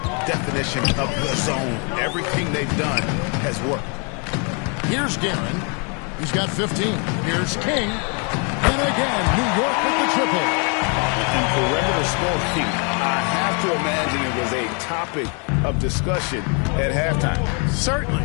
definition of the zone. Everything they've done has worked. Here's Guerin. He's got 15. Here's King. And again, New York with the triple. And perimeter scoring, I have to imagine it was a topic of discussion at halftime. Certainly.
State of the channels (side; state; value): right; quieter; 36.4 dB